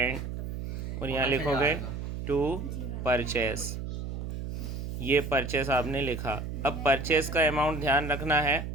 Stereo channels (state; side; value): noise; right; hum, 5 dB below the sound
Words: और यहाँ लिखोगे 2 परचेस। ये परचेस आपने लिखा। अब परचेस का अमाउंट ध्यान रखना है